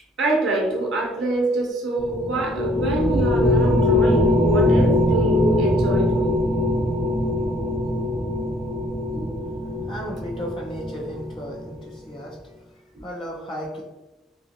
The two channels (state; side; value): normal; both; correlation 0.60